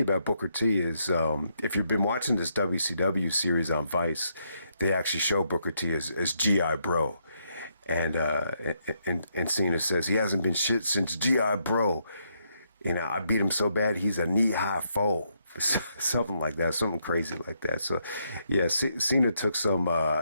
about Booker T is if you've been watching this WCW series on Vice, they actually show Booker T as G.I. Bro. And Cena says he hasn't been shit since G.I. Bro. I beat him so bad he's a knee-high foe. Something like that, something crazy like that. So, yeah, Cena took some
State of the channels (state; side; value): inverted; both; correlation -0.77